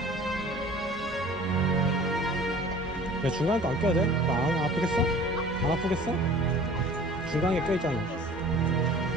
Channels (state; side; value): normal; both; correlation 0.46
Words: 야, 중간에 거 안 껴야 돼? 안 아프겠어? 안 아프겠어? 중간에 껴있잖아.